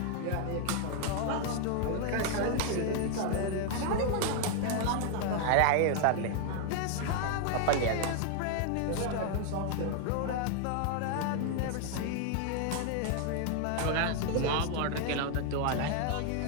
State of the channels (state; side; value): different; both; correlation 0.00